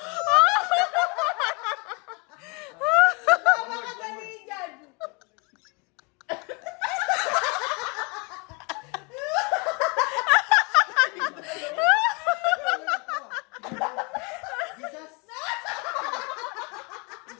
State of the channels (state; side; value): quieter; right; 30.8 dB